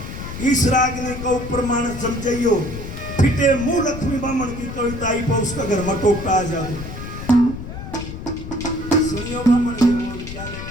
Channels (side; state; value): left; noise; rumble, 9 dB below the sound